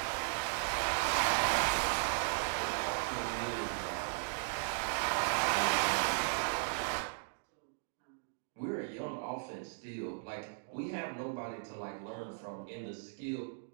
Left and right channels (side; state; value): left; silent; digital silence